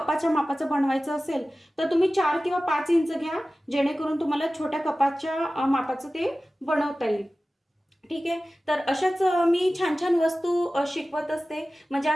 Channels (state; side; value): normal; both; correlation 0.96